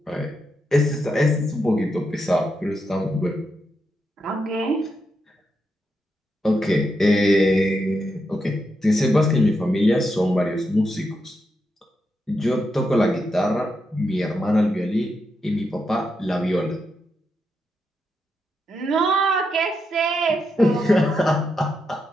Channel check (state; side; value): normal; both; correlation 0.84